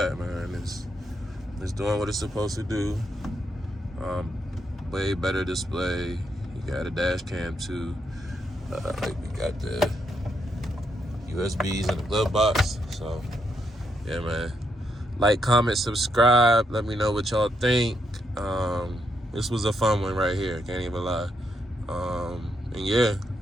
man, it's doing what it's supposed to do. Way better display. You got a dash cam too. We got the USBs in the glove box. So yeah, man, like, comment, subscribe, let me know what y'all think. This was a fun one right here, can't even lie. And yeah,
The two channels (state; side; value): normal; both; correlation 0.79